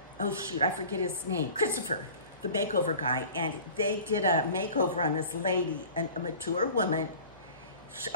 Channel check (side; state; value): both; inverted; correlation -0.43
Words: Oh shoot, I forget his name. Christopher, the makeover guy. And they did a makeover on this lady, a mature woman.